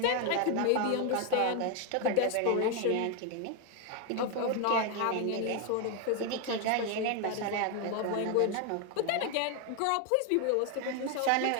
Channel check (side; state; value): both; different; correlation 0.01